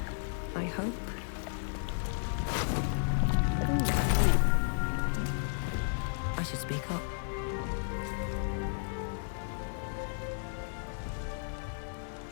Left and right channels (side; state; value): right; silent; 56 dB below the other